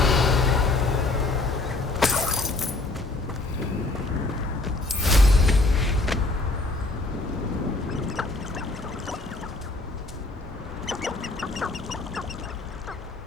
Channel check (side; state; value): right; quieter; 3.0 dB